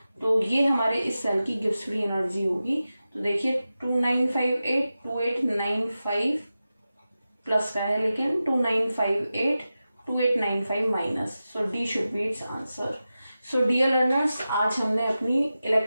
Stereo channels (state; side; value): inverted; both; correlation -0.93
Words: तो ये हमारे इस सेल की गिब्स फ्री एनर्जी होगी। तो देखिए 2958 प्लस का है, लेकिन 2958 minus. So D should be its answer. So dear learners, आज हमने अपनी